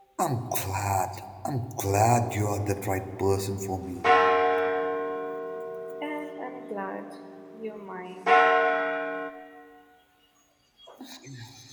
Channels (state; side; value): identical; both; correlation 1.00